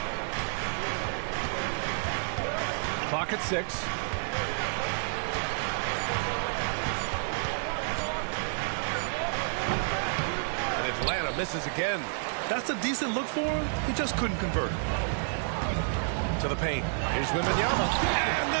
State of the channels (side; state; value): left; silent; digital silence